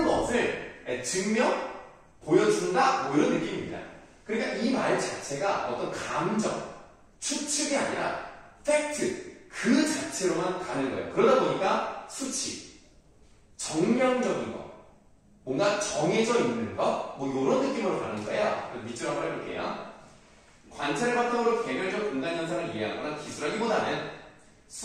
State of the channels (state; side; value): identical; both; correlation 1.00